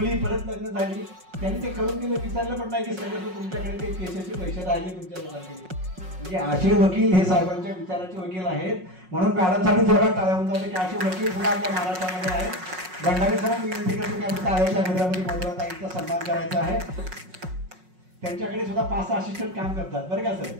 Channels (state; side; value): late; left; 5.5 ms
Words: परत लग्न झाली. त्यांनी ते करून दिलं, विचारलं पण नाही की सगळं तुमच्याकडे ते केसेसचे पैसे राहिले तुमच्या लोकांकडे. म्हणजे असे वकील हे साहेबांच्या विचाराचे वकील आहेत. म्हणून मॅडमसाठी जोरात टाळ्या होऊन जाते की असे वकील सुद्धा आपल्या महाराष्ट्रामध्ये आहेत. भंडारी सर विनंती करतो की आपण टाळ्याच्या गजरामध्ये मधुराताईंचा सन्मान करायचा आहे. त्यांच्याकडे सुद्धा 5 असिस्टंट काम करतात बरं का सर.